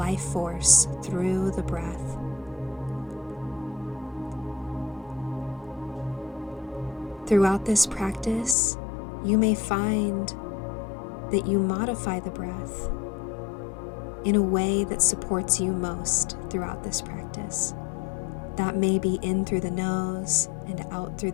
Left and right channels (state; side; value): drops out; right; at 8.6 s